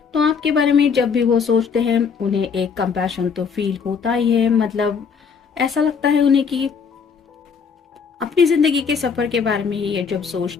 तो आपके बारे में जब भी वो सोचते हैं उन्हें एक कंपैशन तो फील होता ही है। मतलब ऐसा लगता है उन्हें कि अपनी जिंदगी के सफर के बारे में ही ये जब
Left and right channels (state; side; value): quieter; right; 6.0 dB